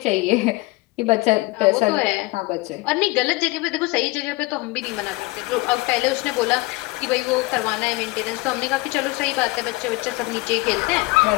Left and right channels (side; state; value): right; quieter; 22.5 dB